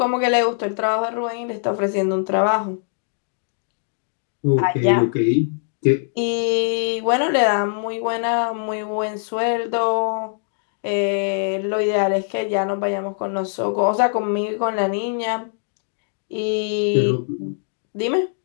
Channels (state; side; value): silent; right; digital silence